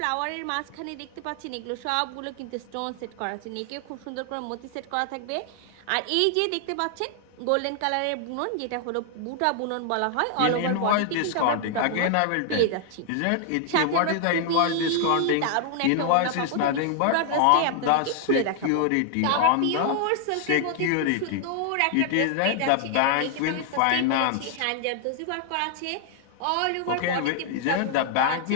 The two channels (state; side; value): different; both; correlation 0.00